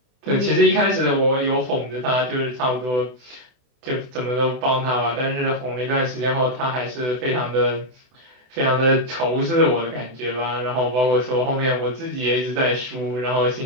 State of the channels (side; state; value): left; late; 24 ms